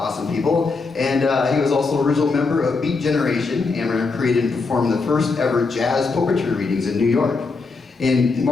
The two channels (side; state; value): right; quieter; 4.2 dB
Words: people. And he was also original member of Beat Generation. Amram created and performed the first ever jazz poetry readings in New York. In